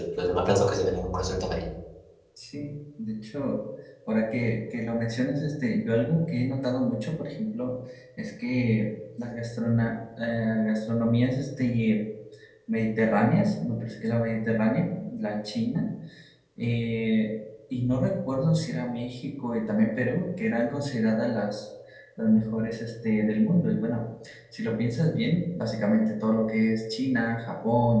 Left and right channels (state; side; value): identical; both; correlation 1.00